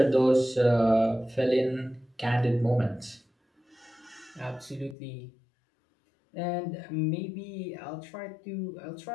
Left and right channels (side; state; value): right; drops out; at 5.0 s